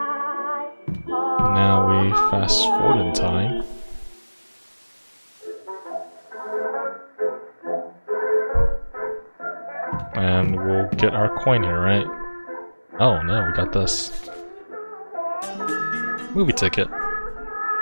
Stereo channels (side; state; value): both; inverted; correlation -1.00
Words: Now we fast forward in time. And we'll get our coin here, right? Oh no, we got this. Movie ticket.